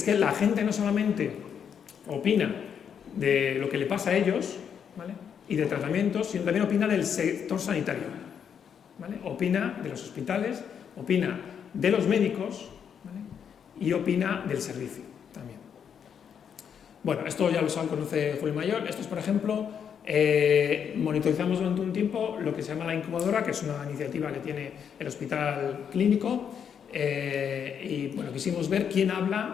que la gente no solamente opina de lo que le pasa a ellos, ¿vale? Y de tratamientos, sino también opina del sector sanitario, ¿vale? Opina de los hospitales, opina de los médicos, ¿vale? Y opina del servicio también. Bueno, esto ya lo conoce Julio Mayor. Esto es, por ejemplo, monitorizamos durante un tiempo lo que se llama la incubadora, que es una iniciativa que tiene el Hospital Clínico, y bueno, quisimos ver quién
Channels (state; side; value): quieter; right; 7.8 dB